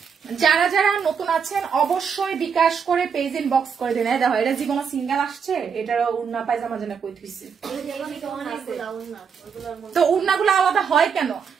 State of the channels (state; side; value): quieter; left; 6.6 dB